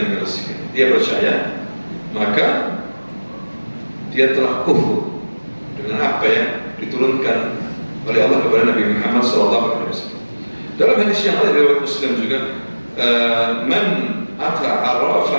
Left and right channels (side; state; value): both; inverted; correlation -1.00